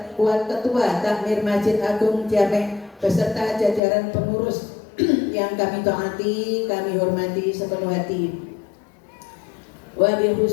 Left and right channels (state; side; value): drops out; right; at 3.8 s